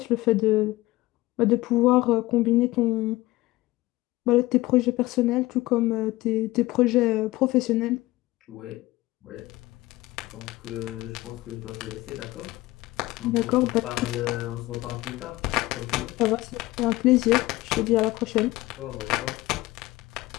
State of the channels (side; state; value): right; quieter; 18.7 dB